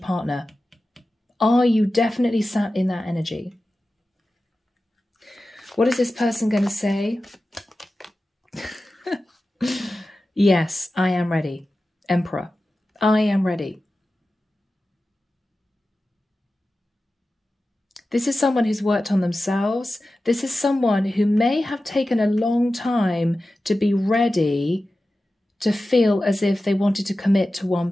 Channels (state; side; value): normal; both; correlation 0.94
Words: Are you definitely sat in that energy? What is this person going to say? Yes, I am ready. Emperor, I am ready. This is someone who's worked on themselves. This is someone who may have taken a long time to be ready to feel as if they wanted to commit to one